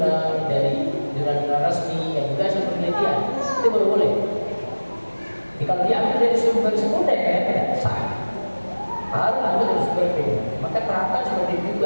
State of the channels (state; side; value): inverted; both; correlation -1.00